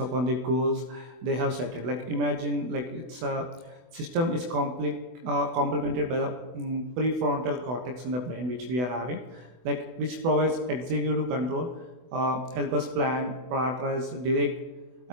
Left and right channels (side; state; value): left; late; 24 ms